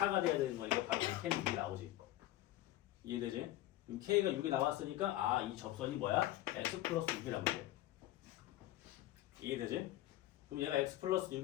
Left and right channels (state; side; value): quieter; right; 15.1 dB